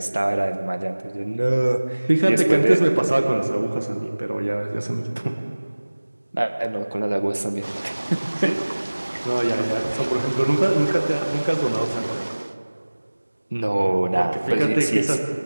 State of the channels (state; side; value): inverted; both; correlation -1.00